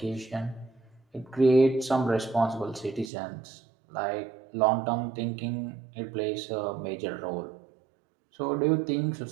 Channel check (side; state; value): left; drops out; at 3.1 s